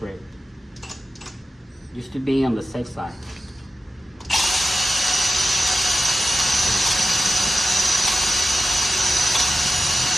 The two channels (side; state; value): both; normal; correlation 0.92